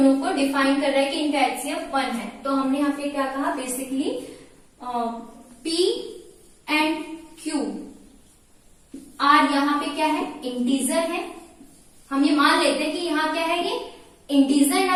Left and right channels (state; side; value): identical; both; correlation 1.00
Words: को डिफाइन कर रहा है कि इनका HCF 1 है। तो हमने यहाँ पे क्या कहा, basically P and Q are यहाँ पे क्या है, इंटीजर है। हम ये मान लेते हैं कि यहाँ क्या है, ये इंटीजर